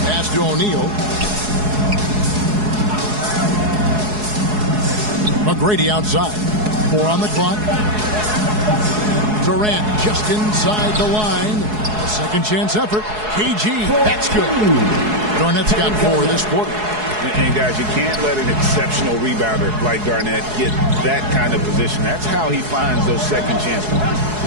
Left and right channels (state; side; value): late; left; 4.7 ms